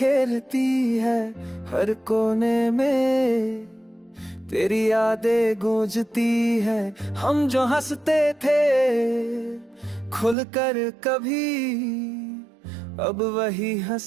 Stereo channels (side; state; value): left; drops out; at 10.4 s